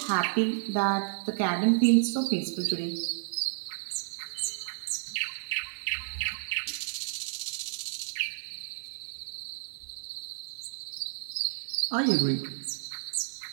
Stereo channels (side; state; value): left; silent; digital silence